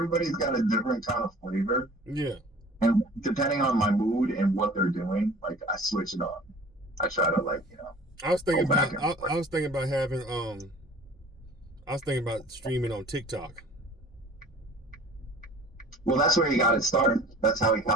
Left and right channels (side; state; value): both; normal; correlation 0.46